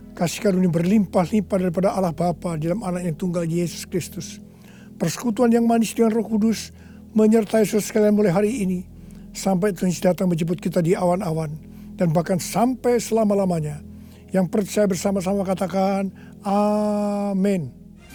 Kasih karunia berlimpah-limpah daripada Allah Bapa dalam anak yang tunggal Yesus Kristus. Persekutuan yang manis dengan Roh Kudus menyertai saudara sekalian mulai hari ini sampai Tuhan Yesus datang menjemput kita di awan-awan dan bahkan sampai selama-lamanya. Yang percaya bersama-sama katakan amin.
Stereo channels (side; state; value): both; identical; correlation 1.00